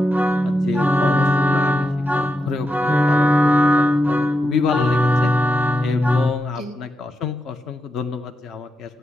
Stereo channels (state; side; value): normal; both; correlation 0.87